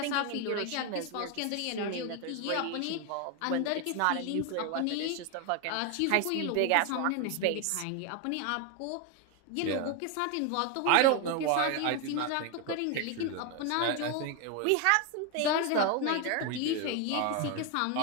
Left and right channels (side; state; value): both; different; correlation 0.01